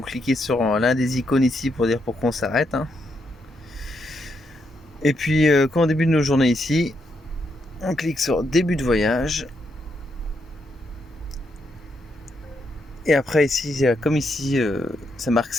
cliquer sur l'un des icônes ici pour dire pourquoi on s'arrête. Et puis quand on débute nos journées ici, on clique sur début de voyage. Et après ici, comme ici, ça marque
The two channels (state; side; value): normal; both; correlation 0.79